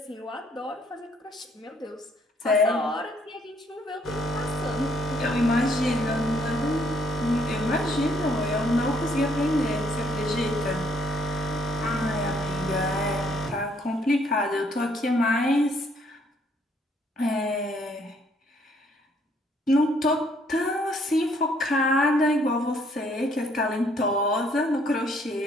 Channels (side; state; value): both; normal; correlation 0.66